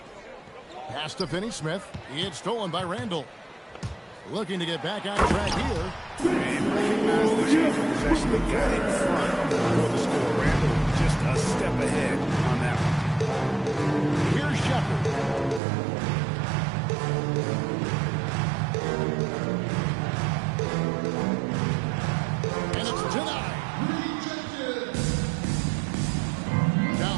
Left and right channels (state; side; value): drops out; left; at 15.6 s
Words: Pass to Finney-Smith. It's stolen by Randall. Looking to get back on track here. And recognize the change of possession. They got in front for the score. Randall just a step ahead on that one. Here's Shepard. And it's denied. Down